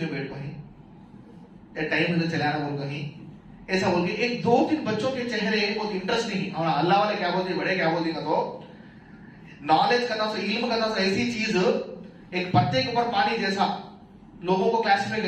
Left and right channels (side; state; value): both; identical; correlation 1.00